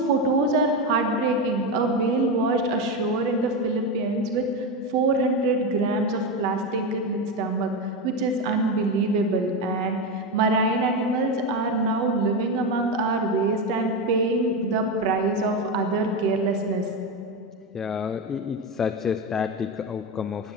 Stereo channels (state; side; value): normal; both; correlation 0.14